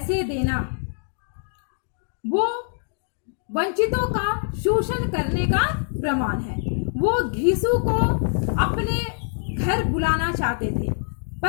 देना वो वंचितों का शोषण करने का प्रमाण है। वो घीसू को अपने घर बुलाना चाहते थे,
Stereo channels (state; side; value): silent; right; digital silence